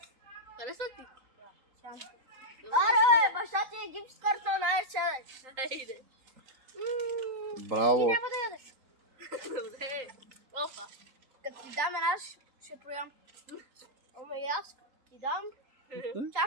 Харесва ти? Аре, баща ти е гипс картон, айде сядаш. Хайде. Ти Браво! няма да ядеш. Добре. Опа. Като ти дам една, ще проям. Ама и аз ти дам.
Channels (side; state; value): left; late; 3.9 ms